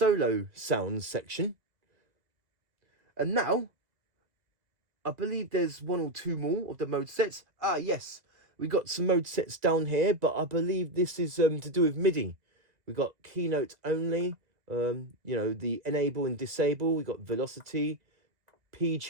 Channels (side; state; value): left; late; 1.9 ms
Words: sounds section. And now I believe there's one or two more of the mode sets. Ah, yes, we got some mode sets down here, but I believe this is to do with MIDI. We got keynote only, you know, the enable and disable. We got velocity, P